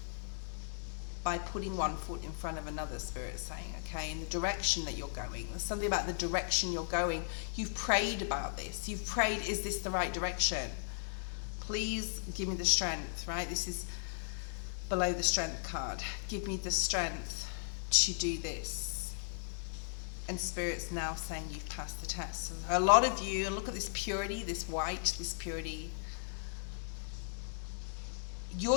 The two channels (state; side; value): silent; right; digital silence